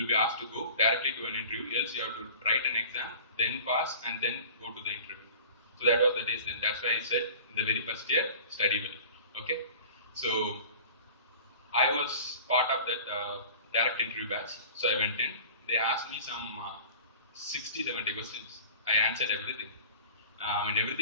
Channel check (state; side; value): inverted; both; correlation -0.41